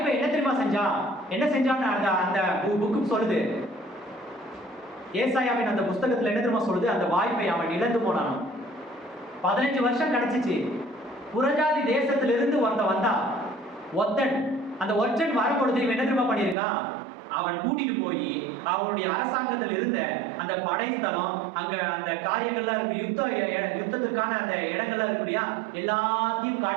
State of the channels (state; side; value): drops out; left; at 16.6 s